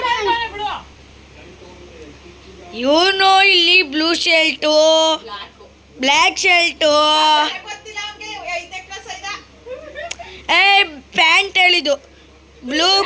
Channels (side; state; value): both; identical; correlation 1.00